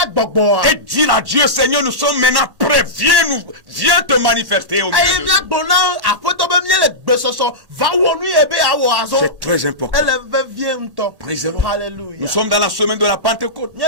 Et dire à Dieu, Seigneur, nous sommes maintenant prêts viens te manifester au milieu de nous. C'est très important. Nous sommes dans la semaine de la Pentecôte,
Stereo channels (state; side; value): late; left; 1.1 ms